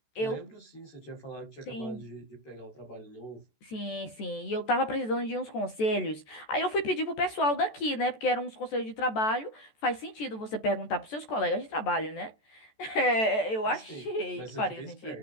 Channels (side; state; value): right; late; 14 ms